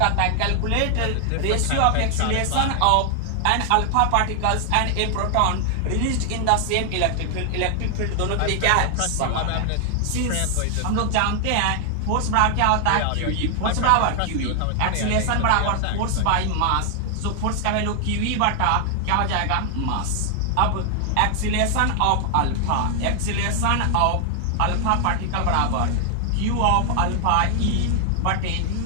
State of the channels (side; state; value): both; different; correlation 0.00